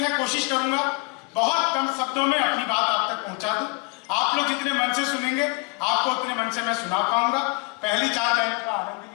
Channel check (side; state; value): right; quieter; 29.4 dB